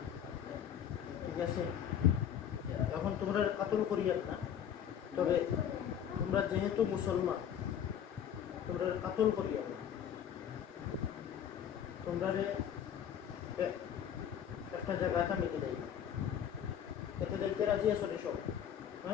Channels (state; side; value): quieter; right; 9.1 dB